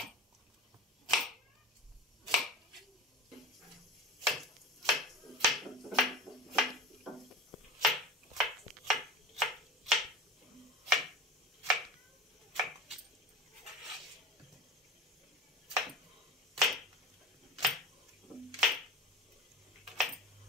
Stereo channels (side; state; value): both; normal; correlation 0.34